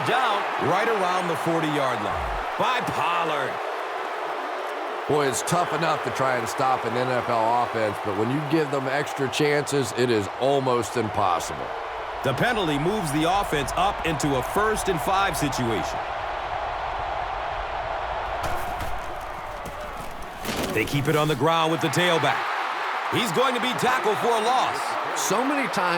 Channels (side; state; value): both; identical; correlation 1.00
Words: down right around the 40-yard line by Pollard. Boy, it's tough enough to try and stop an NFL offense, but when you give them extra chances, it is almost impossible. The penalty moves the offense up into a 1st and 5 situation. They keep it on the ground with the tailback. He's going to be tackled for a loss. So many